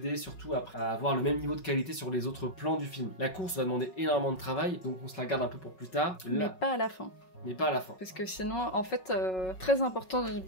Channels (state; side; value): late; right; 5.4 ms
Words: surtout à avoir le même niveau de qualité sur les autres plans du film. La course va demander énormément de travail, donc on se la garde un peu pour plus tard. Mais pas à la fin. mais pas à la fin. Parce que sinon, en fait, très important dans une